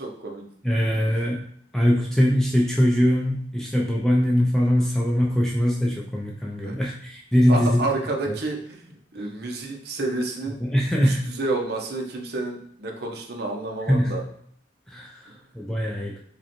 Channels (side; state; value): both; normal; correlation 0.88